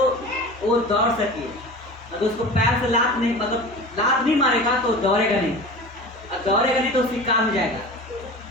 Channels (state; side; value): normal; both; correlation 0.35